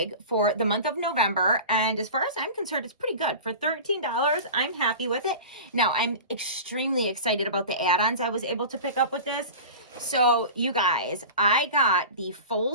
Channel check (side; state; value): both; inverted; correlation -0.34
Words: for the month of November. And as far as I'm concerned, it's pretty good. For $13, I'm happy with it. Now, I'm extremely excited about the add-ons I was able to pick up with this. So, you guys, I got the